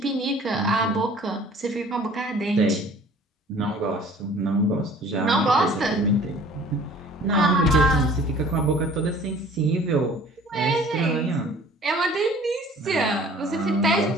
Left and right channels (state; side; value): normal; both; correlation 0.50